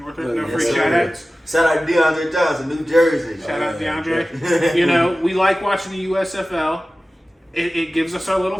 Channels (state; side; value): normal; both; correlation 0.96